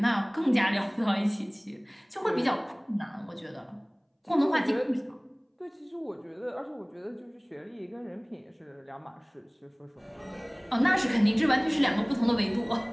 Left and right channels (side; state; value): both; identical; correlation 1.00